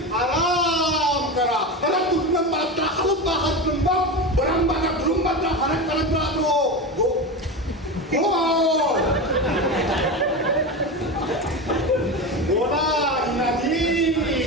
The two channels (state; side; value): normal; both; correlation 0.22